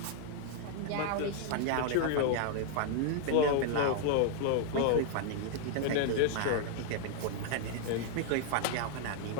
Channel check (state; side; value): different; both; correlation 0.00